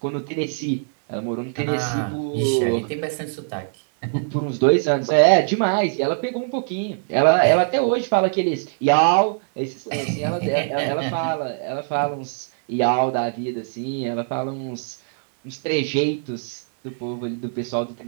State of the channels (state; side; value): silent; left; digital silence